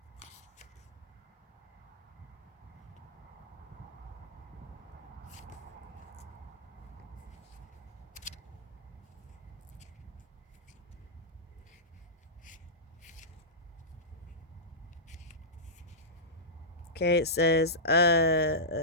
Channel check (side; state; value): both; normal; correlation -0.15